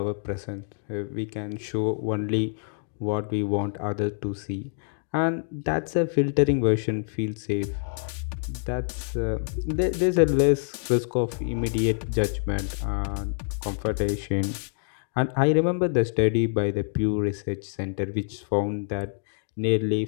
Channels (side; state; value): right; silent; digital silence